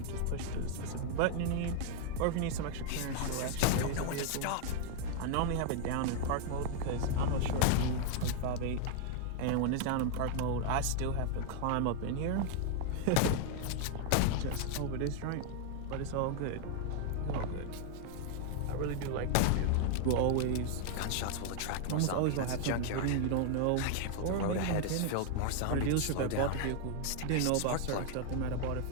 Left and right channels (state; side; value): different; both; correlation 0.00